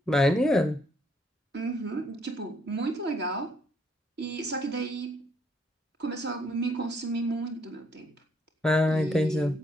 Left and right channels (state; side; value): normal; both; correlation 0.70